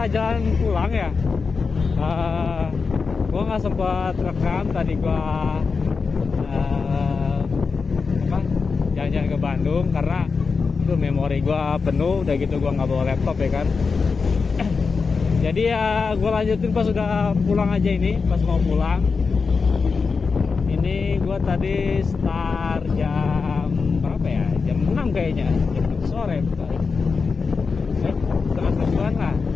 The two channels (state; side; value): quieter; right; 4.9 dB